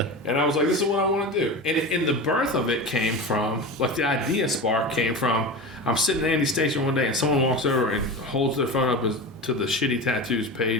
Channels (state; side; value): normal; both; correlation 0.27